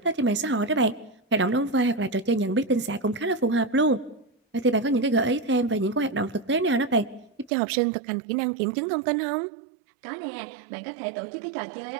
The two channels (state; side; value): drops out; left; at 7.5 s